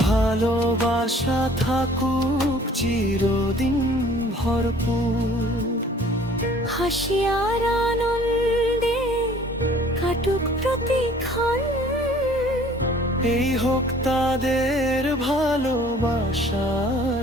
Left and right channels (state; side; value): normal; both; correlation 0.53